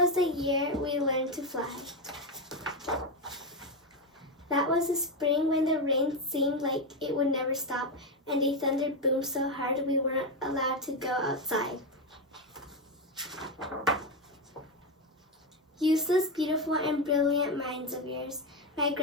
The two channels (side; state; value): both; normal; correlation 0.10